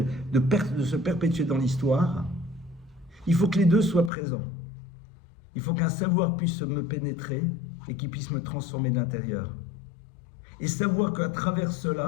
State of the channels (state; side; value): drops out; right; at 4.1 s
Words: de se perpétuer dans l'histoire, il faut que les deux soient présents. Il faut qu'un savoir puisse me pénétrer et qu'il puisse me transformer de l'intérieur. Et savoir qu'à travers